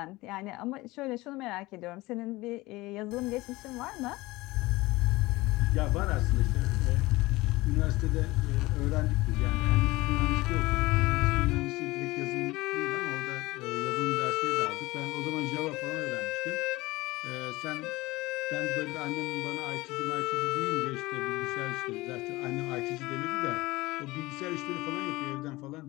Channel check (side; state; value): right; quieter; 20.3 dB